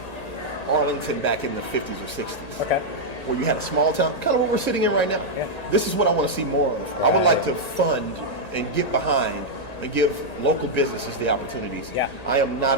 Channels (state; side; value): late; right; 1.9 ms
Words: Arlington back in the 50s or 60s. Where you had a small town, kind of what we're sitting in right now. This is what I want to see more of. I would like to fund and get behind and give local businesses the opportunities. I am not